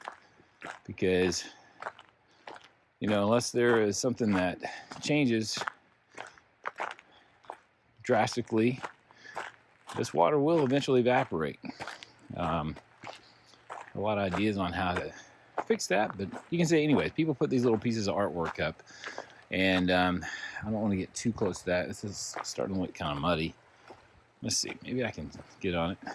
because unless there is something that changes drastically, this water will eventually evaporate. A lot of ideas on how to fix that, but you can see anyways, people put these little pieces of artwork up, and I don't want to get too close to that. This is starting to look kind of muddy. Let's see, maybe I can get on it.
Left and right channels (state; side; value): identical; both; correlation 1.00